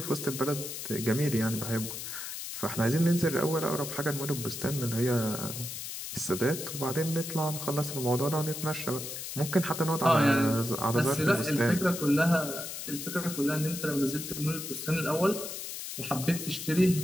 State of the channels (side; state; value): left; noise; hiss, 7 dB below the sound